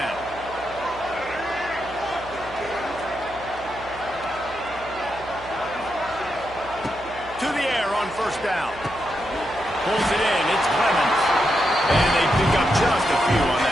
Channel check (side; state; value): right; noise; hum, 19 dB below the sound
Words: To the air on first down. Pulls it in. It's Clemens. And they pick up just a few on